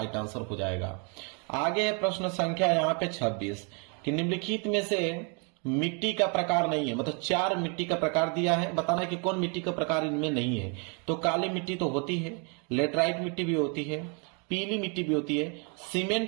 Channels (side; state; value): left; quieter; 35.9 dB